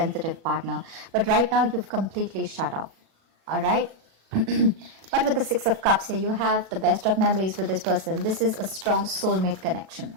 partner. But right now, you've completely shut up, all right? But with the Six of Cups here, you have the best of memories with this person. This is a strong soulmate connection,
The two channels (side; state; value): left; late; 37 ms